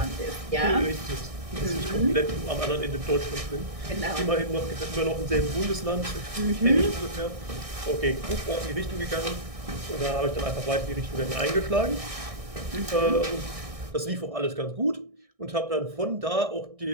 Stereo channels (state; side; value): late; left; 1.6 ms